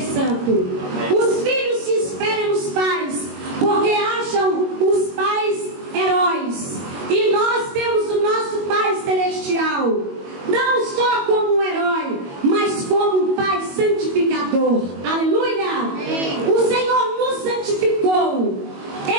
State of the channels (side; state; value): left; late; 22 ms